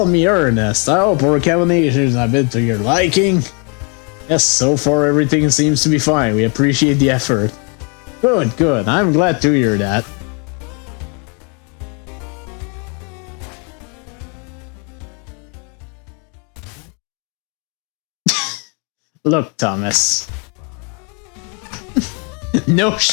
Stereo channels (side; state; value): right; quieter; 36.3 dB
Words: me Ernest. I hope our combinations have been to your liking. Yes, so far everything seems to be fine. We appreciate the effort. Good, good. I'm glad to hear that. Look, Thomas. No